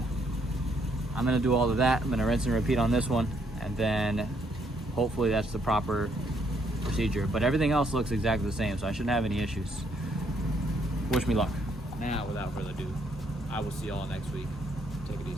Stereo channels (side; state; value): both; normal; correlation 0.71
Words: I'm gonna do all of that. I'm gonna rinse and repeat on this one, and then hopefully that's the proper procedure. But everything else looks exactly the same, so I shouldn't have any issues. Wish me luck. Now, without further ado, I will see y'all next week. Take it